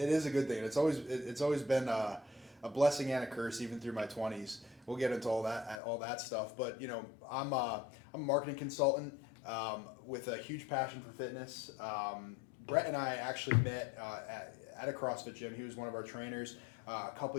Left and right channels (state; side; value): drops out; right; at 5.8 s